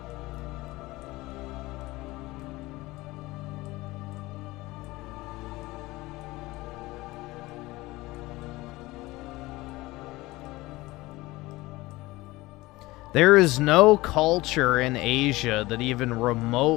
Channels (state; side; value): quieter; right; 19.9 dB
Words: There is no culture in Asia that even